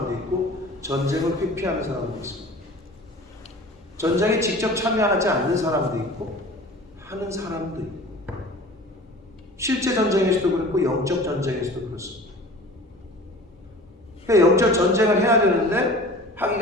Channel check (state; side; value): normal; both; correlation 0.41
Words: 있고 전쟁을 회피하는 사람도 있습니다. 전쟁에 직접 참여하지 않는 사람도 있고 하는 사람도 있고, 실제 전쟁에서도 그렇고 영적 전쟁에서도 그렇습니다. 그러니까 영적 전쟁을 해야 되는데